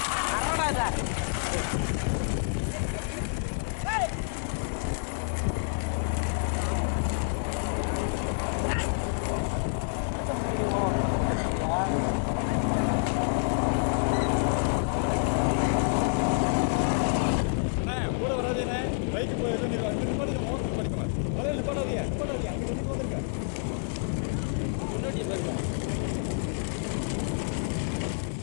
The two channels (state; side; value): silent; right; digital silence